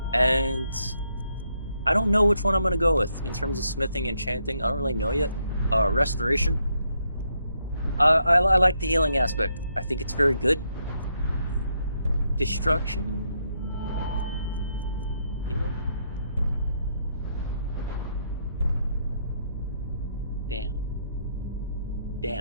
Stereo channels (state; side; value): inverted; both; correlation -0.77